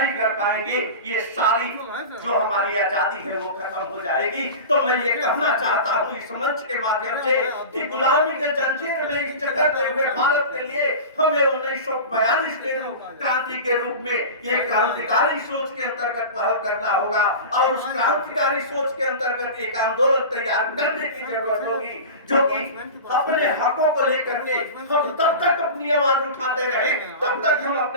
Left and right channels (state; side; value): inverted; both; correlation -0.31